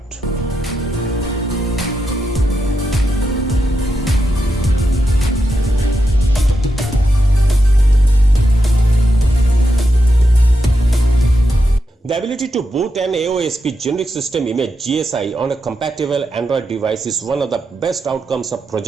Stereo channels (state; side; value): normal; both; correlation 0.85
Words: The ability to boot an AOSP generic system image GSI on a compatible Android device is one of the best outcomes of